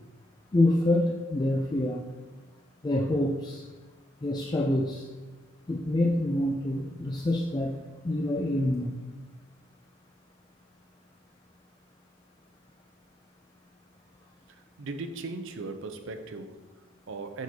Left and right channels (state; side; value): normal; both; correlation 0.82